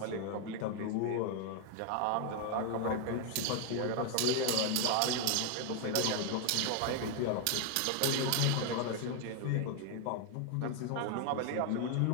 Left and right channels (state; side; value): different; both; correlation 0.00